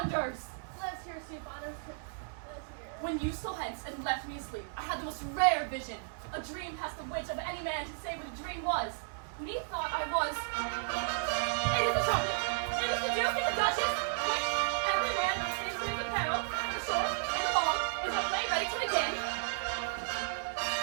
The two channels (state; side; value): silent; left; 55 dB below the other